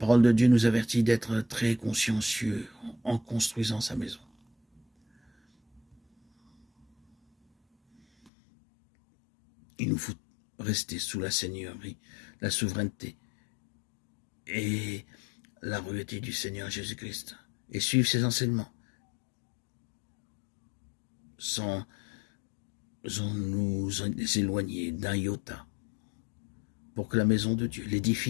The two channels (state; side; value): drops out; right; at 8.3 s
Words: de Dieu nous avertit d'être très consciencieux en construisant sa maison. Il nous faut rester sous la seigneurie, la souveraineté et la royauté du Seigneur Jésus-Christ et suivre ses enseignements sans nous éloigner d'un iota pour que la maison de Dieu,